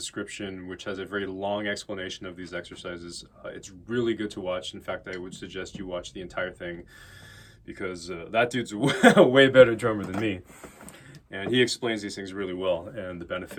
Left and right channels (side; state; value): both; identical; correlation 1.00